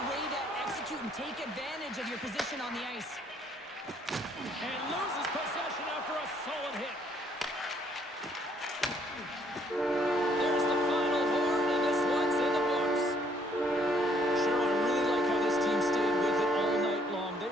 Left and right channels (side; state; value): both; normal; correlation 0.66